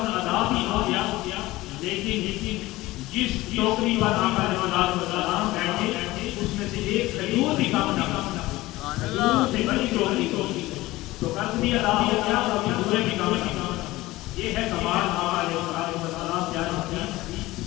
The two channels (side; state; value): right; quieter; 18.5 dB